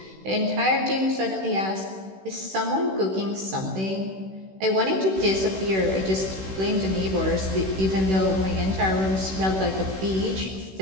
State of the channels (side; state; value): left; late; 16 ms